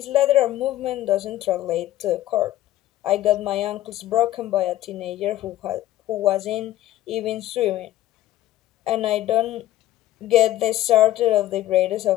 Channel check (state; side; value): quieter; right; 14.3 dB